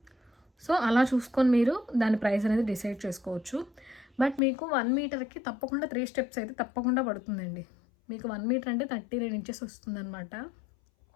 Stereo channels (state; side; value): drops out; right; at 4.4 s